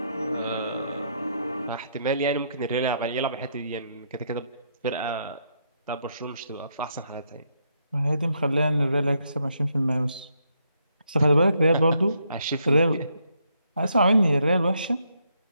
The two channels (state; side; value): inverted; both; correlation -0.76